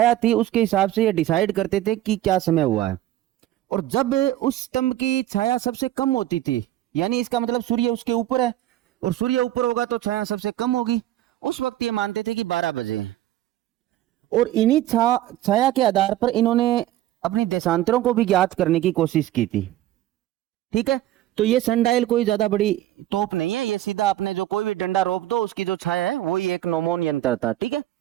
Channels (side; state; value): left; quieter; 14.1 dB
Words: थी उसके हिसाब से ये डिसाइड करते थे कि क्या समय हुआ है। और जब उस स्तंभ की छाया सबसे कम होती थी, यानी इसका मतलब सूर्य उसके ऊपर है और सूर्य ऊपर होगा तो छाया सबसे कम होगी, उस वक्त ये मानते थे कि 12 बजे। और इन्हीं छाया के आधार पर इन्होंने अपनी देशांतरों को भी ज्ञात करने की कोशिश की थी। ठीक है, तो ये सनडायल कोई ज्यादा बड़ी तोप नहीं है, ये सीधा अपने जो कोई भी डंडा रोक दो उसकी जो छाया है वही एक नोमोन यंत्र था। ठीक है,